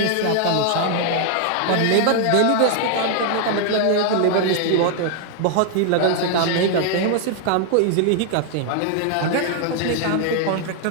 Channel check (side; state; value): both; different; correlation 0.00